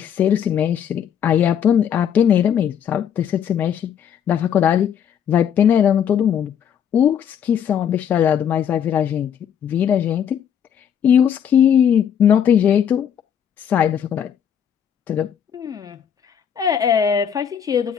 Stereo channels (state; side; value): quieter; right; 8.6 dB